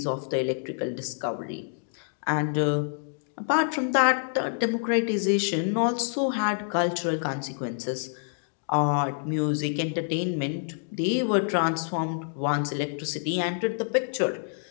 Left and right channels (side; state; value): right; silent; digital silence